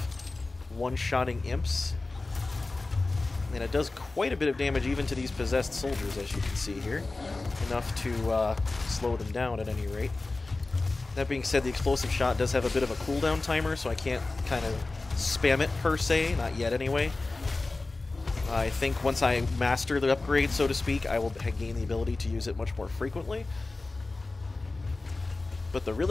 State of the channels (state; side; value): quieter; right; 3.3 dB